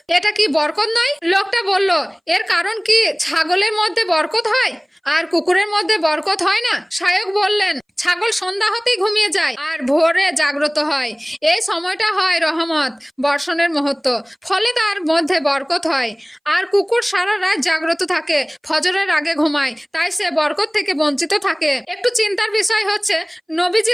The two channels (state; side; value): identical; both; correlation 1.00